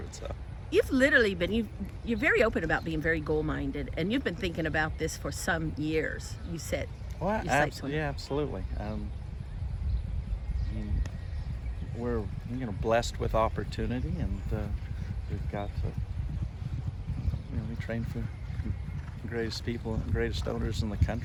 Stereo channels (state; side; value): identical; both; correlation 1.00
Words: itself. You've literally been you're very open about being very goal-minded, and you've been thinking about this for some years. You said. Well, absolutely. We're blessed with opportunity, and we've got we train for the greatest people and greatest owners in the